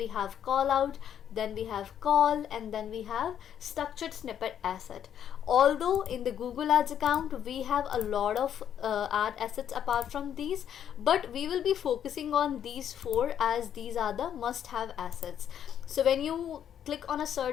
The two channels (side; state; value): right; quieter; 9.4 dB